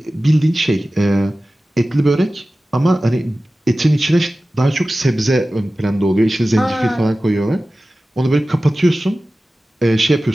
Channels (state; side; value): normal; both; correlation 0.96